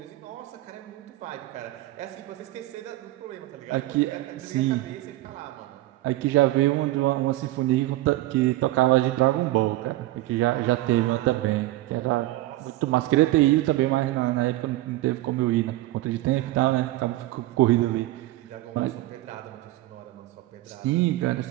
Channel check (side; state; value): left; quieter; 17.0 dB